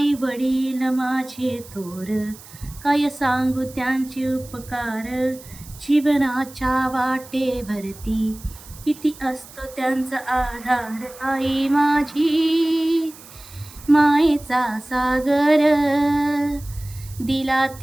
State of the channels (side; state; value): right; noise; hiss, 19 dB below the sound